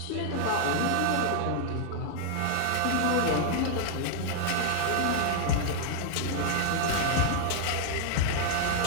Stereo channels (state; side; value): different; both; correlation 0.00